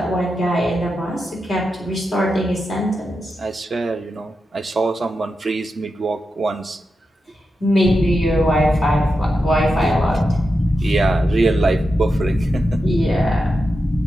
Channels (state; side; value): normal; both; correlation 0.89